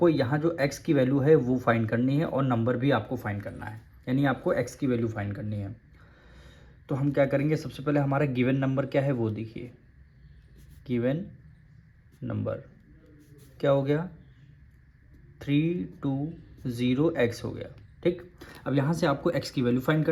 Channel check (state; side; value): identical; both; correlation 1.00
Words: यहाँ जो x की वैल्यू है वो फाइंड करनी है और नंबर भी आपको फाइंड करना है, यानी आपको x की वैल्यू फाइंड करनी है। तो हम क्या करेंगे, सबसे पहले हमारा गिवन नंबर क्या है वो देखिए। गिवन नंबर क्या हो गया? 320x हो गया। ठीक, अब यहाँ से आपको x की वैल्यू फाइंड